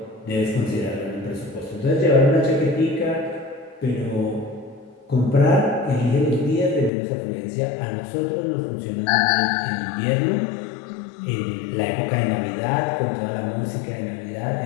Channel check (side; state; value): right; drops out; at 6.9 s